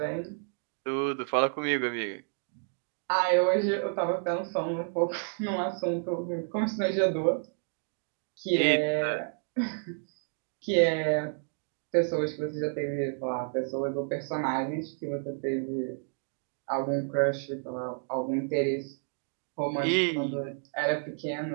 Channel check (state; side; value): silent; left; 58 dB below the other